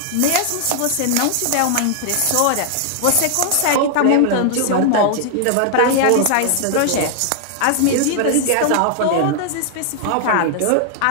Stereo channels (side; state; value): both; different; correlation 0.00